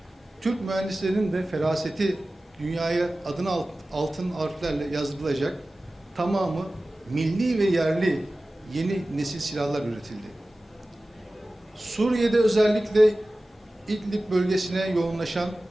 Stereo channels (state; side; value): normal; both; correlation 0.96